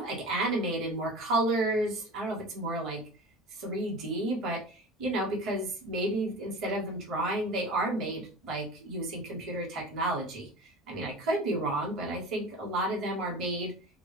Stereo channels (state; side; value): normal; both; correlation 0.34